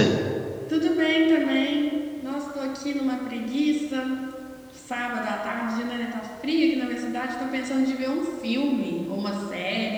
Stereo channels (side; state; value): both; identical; correlation 1.00